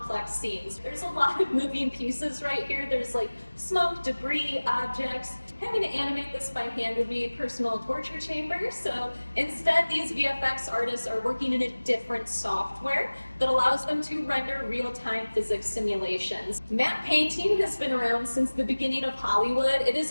scenes. There's a lot of moving pieces right here. There's like smoke, debris, objects, Having to animate this by hand would be a personal torture chamber, so instead these VFX artists are working in a different software that allows them to render real-time physics simulations. Matte painting has been around since the beginning of Hollywood. It is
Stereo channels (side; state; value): both; inverted; correlation -1.00